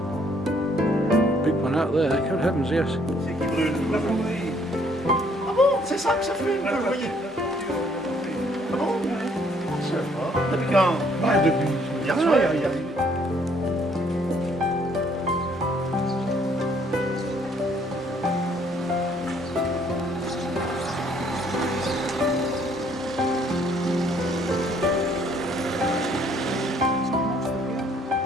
Big one out there, good heavens, yes. Ah bon, c'est ça que ça fait, vous voyez. Ah bon? Je sais pas. Depuis quand? Bah, depuis hier soir, il y a...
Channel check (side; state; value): both; normal; correlation 0.64